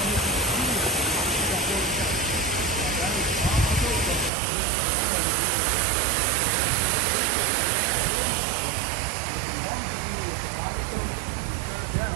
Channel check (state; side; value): drops out; left; at 4.3 s